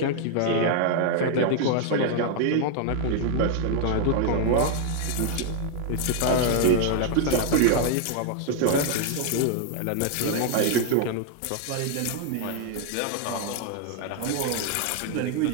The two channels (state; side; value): different; both; correlation 0.00